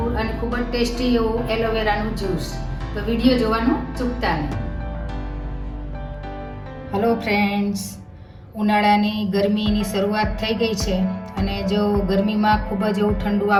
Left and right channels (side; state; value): both; identical; correlation 1.00